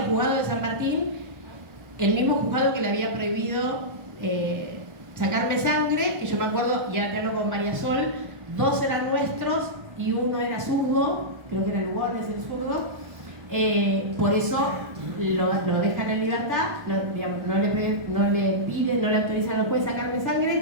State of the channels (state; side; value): late; left; 1.4 ms